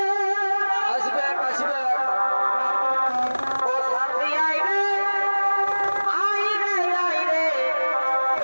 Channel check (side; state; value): both; inverted; correlation -1.00